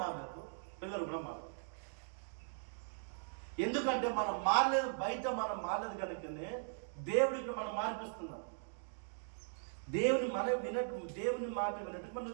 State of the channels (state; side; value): silent; left; digital silence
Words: మారలేదు, పిల్లలు కూడా మారలేదు. ఎందుకంటే మనం మారలేదు, బయట మనం మారలేదు కనుకనే దేవుడికి మనం మార్పిస్తున్నాం. దేవుని మాట వినట్టు మనం